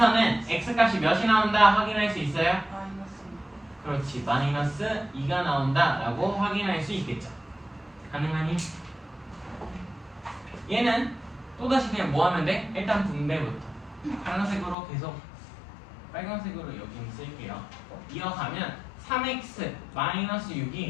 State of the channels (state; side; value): drops out; right; at 14.8 s